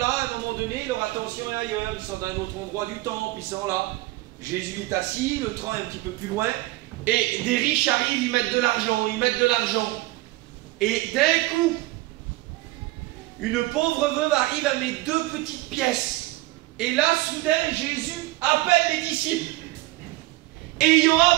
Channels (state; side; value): quieter; left; 19.0 dB